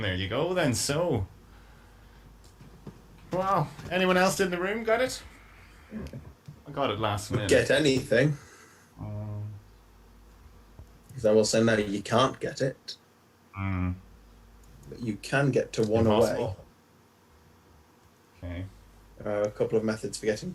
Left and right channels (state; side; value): identical; both; correlation 1.00